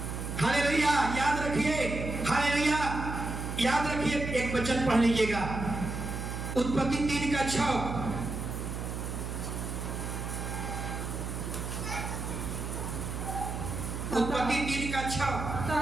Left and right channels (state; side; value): noise; right; hum, 5 dB below the sound